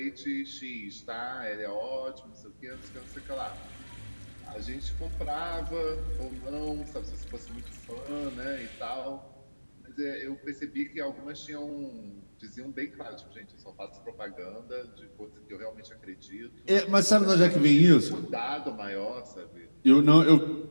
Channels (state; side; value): inverted; both; correlation -1.00